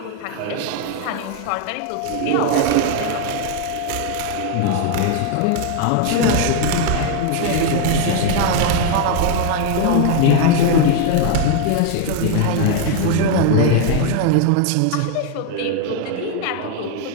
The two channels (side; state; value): both; different; correlation 0.01